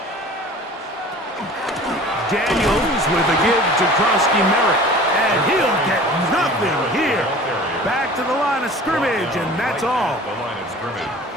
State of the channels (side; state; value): both; normal; correlation 0.43